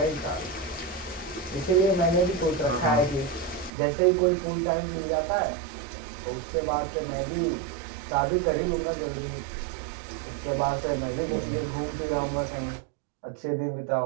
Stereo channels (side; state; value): left; drops out; at 3.7 s